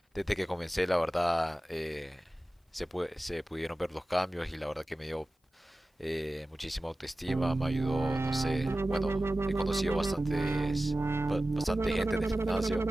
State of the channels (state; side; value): normal; both; correlation 0.96